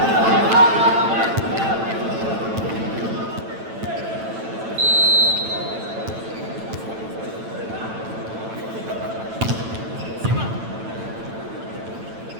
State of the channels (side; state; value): left; late; 9.0 ms